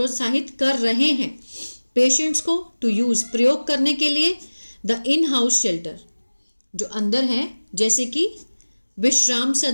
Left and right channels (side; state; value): both; inverted; correlation -1.00